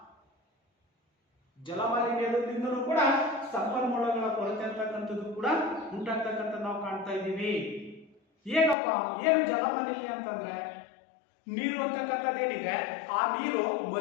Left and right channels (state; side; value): drops out; right; at 8.8 s